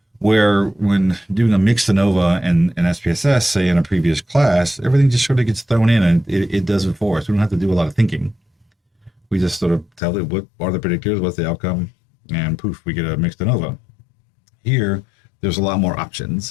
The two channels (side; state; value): right; drops out; at 10.0 s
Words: Where when doing a mixed ANOVA and SPSS, say in a previous class, everything just sort of gets thrown in and it does it for us. We don't have to do a lot of thinking. We just sort of tell it what are the predictors, what's the outcome, and poof, we get a mixed ANOVA. Here, there's a lot more